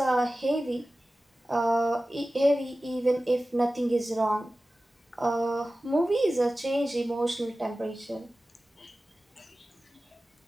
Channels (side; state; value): both; normal; correlation 0.96